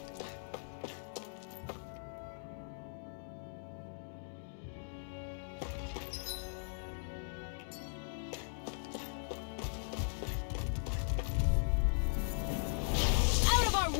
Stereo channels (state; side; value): silent; right; digital silence